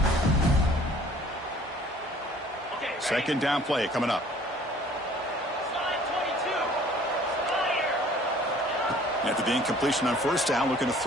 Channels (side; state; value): both; normal; correlation 0.53